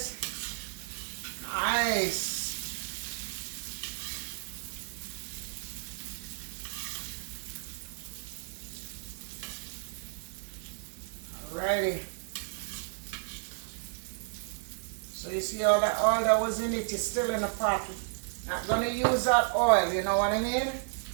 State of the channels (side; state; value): left; silent; 56 dB below the other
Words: Nice. Alrighty. So you see all that oil that was in it is still in the pot. Not gonna use that oil, you know what I mean?